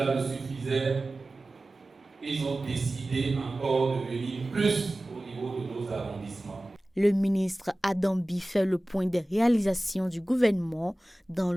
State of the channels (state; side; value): normal; both; correlation 0.97